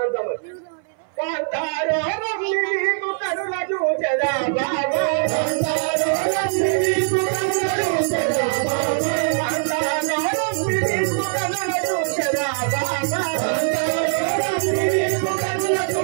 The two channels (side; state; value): left; silent; 61 dB below the other